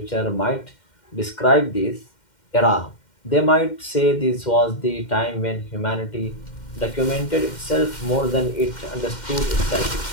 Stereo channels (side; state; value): right; late; 2.1 ms